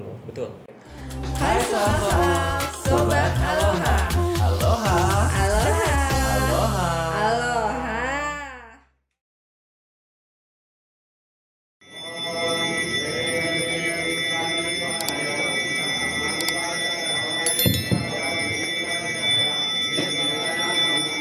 loh. Betul. Hai soal Sobat Aloha. Aloha. Aloha. Aloha. Aloha.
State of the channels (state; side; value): identical; both; correlation 1.00